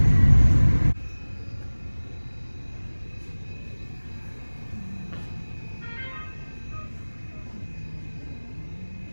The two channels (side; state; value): both; inverted; correlation -1.00